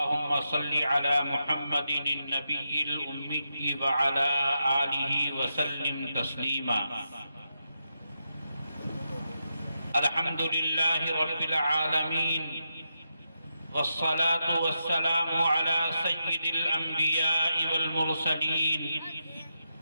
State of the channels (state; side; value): inverted; both; correlation -0.85